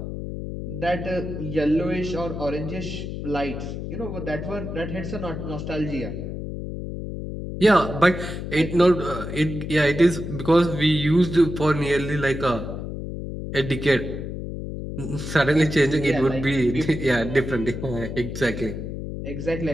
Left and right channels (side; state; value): left; noise; hum, 6 dB below the sound